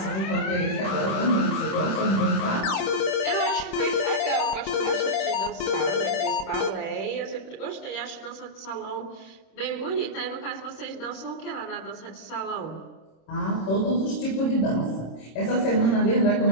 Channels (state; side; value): late; right; 26 ms